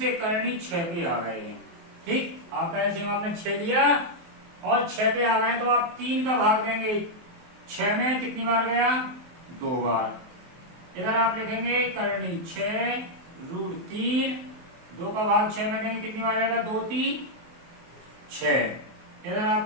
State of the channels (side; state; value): left; late; 23 ms